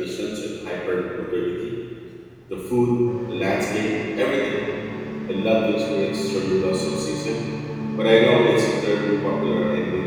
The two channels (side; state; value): both; identical; correlation 1.00